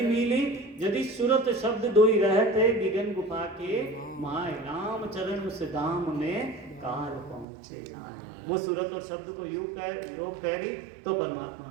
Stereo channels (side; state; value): left; drops out; at 7.5 s